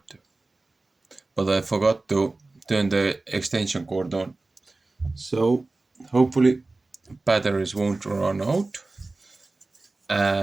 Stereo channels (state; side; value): quieter; left; 3.2 dB